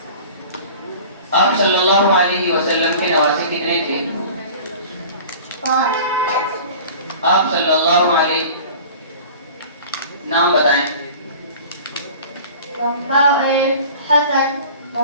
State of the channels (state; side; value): inverted; both; correlation -0.41